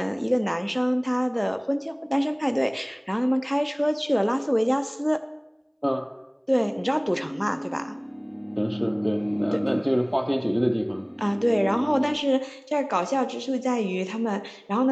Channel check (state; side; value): identical; both; correlation 1.00